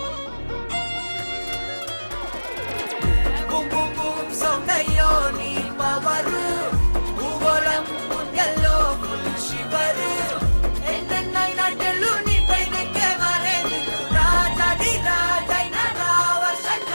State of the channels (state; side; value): inverted; both; correlation -1.00